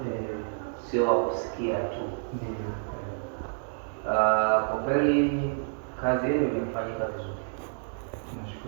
sio wa kusikia tu. Ndio. Kwa kweli kazi yenu imefanyika vizuri.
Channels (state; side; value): silent; left; digital silence